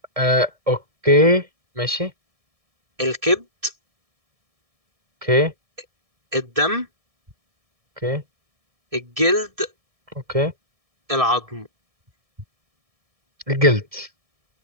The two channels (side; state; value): left; late; 1.7 ms